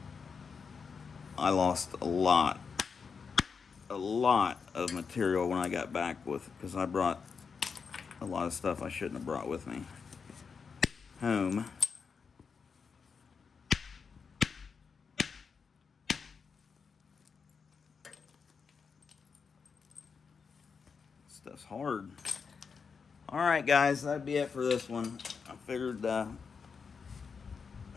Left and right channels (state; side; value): quieter; right; 5.7 dB